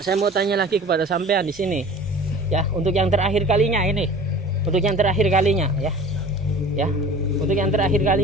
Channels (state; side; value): normal; both; correlation 0.42